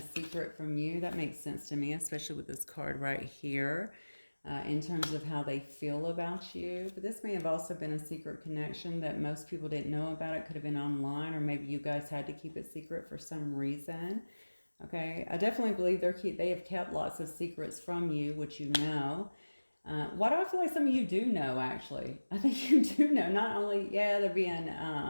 secret from you. That makes sense to me, especially with this card right here, in terms of how they feel about you. But this may have also been a secret connection that most people didn't know about. It could have been online, or maybe you guys had to keep it secret for some reason. Okay, I definitely believe they have kept lots of secrets from you, which you know. Why do I feel like some of you do know, actually? I think you do know. Not only, yeah, they're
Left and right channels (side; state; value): both; inverted; correlation -1.00